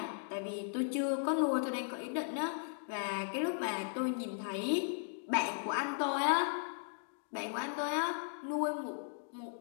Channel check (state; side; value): silent; right; digital silence